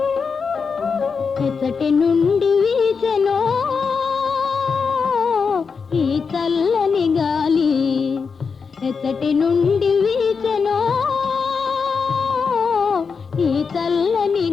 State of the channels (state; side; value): quieter; right; 5.5 dB